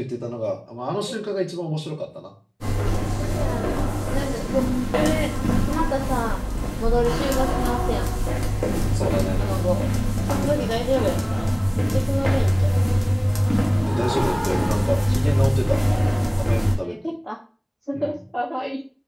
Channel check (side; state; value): both; identical; correlation 1.00